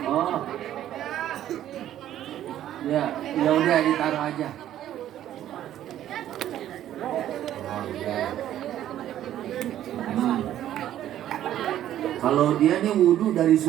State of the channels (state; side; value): quieter; left; 11.9 dB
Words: Oh, ya udah ditaruh aja. Oh, ya. Kalau dia nih wudhu dari